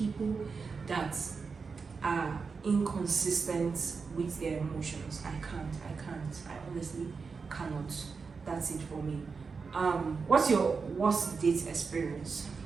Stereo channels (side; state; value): left; quieter; 5.0 dB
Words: that are inconsistent with their emotions. I can't. I honestly cannot. That's it for me. What's your worst date experience?